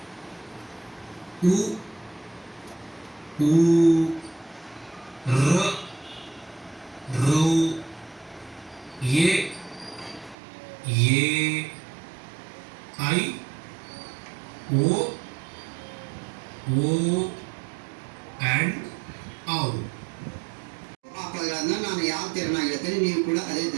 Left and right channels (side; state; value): left; drops out; at 10.4 s